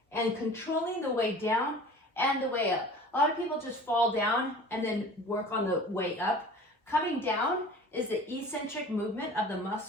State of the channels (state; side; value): normal; both; correlation 0.42